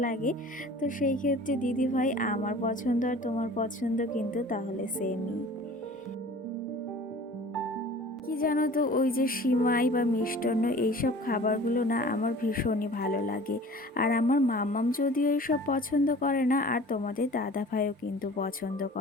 লাগে। তো সেই ক্ষেত্রে দিদিভাই আমার পছন্দ আর তোমার পছন্দ কিন্তু তাহলে সেমই। কি জানো তো ওই যে সিমাই বা মিষ্টান্ন এইসব খাবারগুলো না আমার ভীষণই ভালো লাগে। আর আমার মাম্মাম যদিও এইসব পছন্দ করে না আর তোমাদের দাদা ভাইও কিন্তু পছন্দ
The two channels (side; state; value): both; normal; correlation 0.44